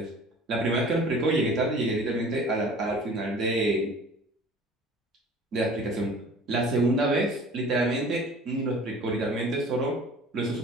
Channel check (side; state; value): both; normal; correlation 0.46